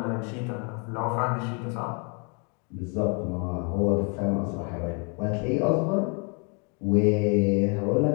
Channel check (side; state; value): right; quieter; 35.2 dB